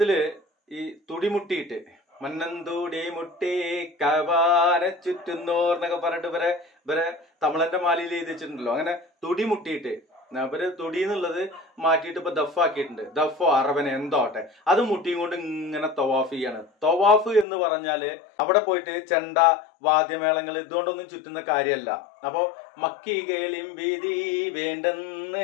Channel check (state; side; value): drops out; right; at 17.4 s